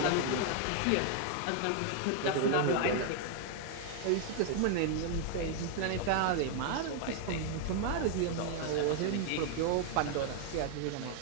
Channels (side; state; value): both; different; correlation 0.00